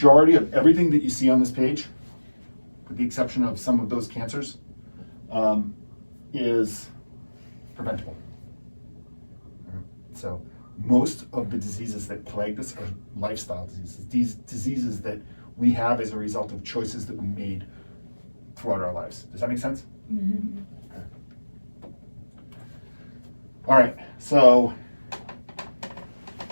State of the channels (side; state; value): both; inverted; correlation -1.00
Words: of everything that you see on this page, with the exception of some of those cancers, is preventable. So most of the diseases that plague us are lifestyle diseases. These diseases that we have as a result of choices that we made throughout our lives. Does that make sense? Mm-hmm. Okay. All right, so